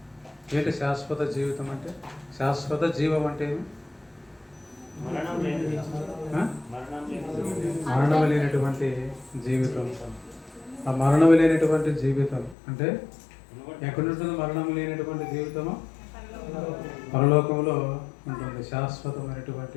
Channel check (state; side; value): drops out; right; at 12.6 s